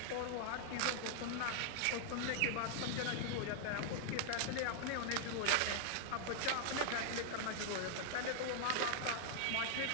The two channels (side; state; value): both; different; correlation -0.01